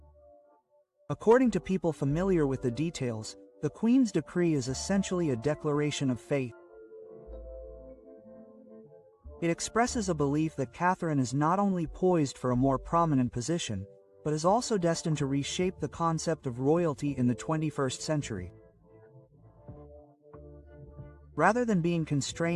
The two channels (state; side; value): identical; both; correlation 1.00